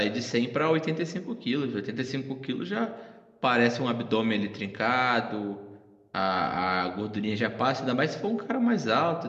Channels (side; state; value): both; identical; correlation 1.00